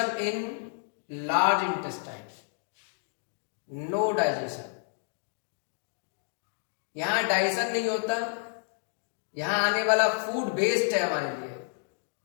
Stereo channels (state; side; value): silent; right; digital silence